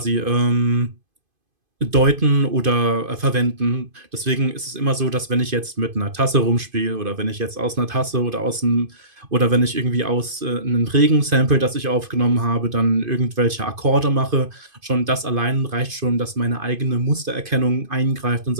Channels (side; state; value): left; late; 2.5 ms